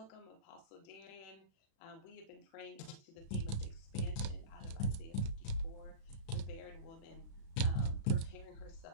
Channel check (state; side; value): late; right; 36 ms